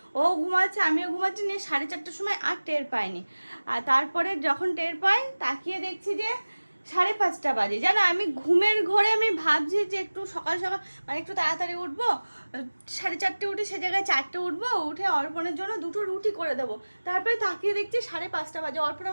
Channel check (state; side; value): inverted; both; correlation -1.00